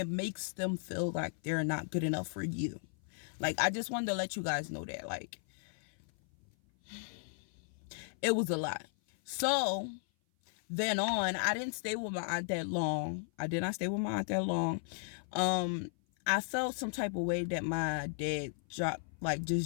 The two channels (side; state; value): right; silent; 54 dB below the other